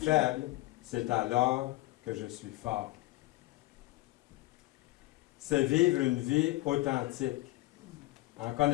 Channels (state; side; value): quieter; right; 19.4 dB